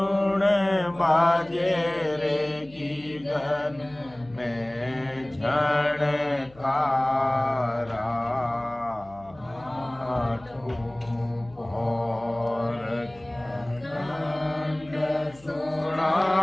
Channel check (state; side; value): noise; left; hum, 24 dB below the sound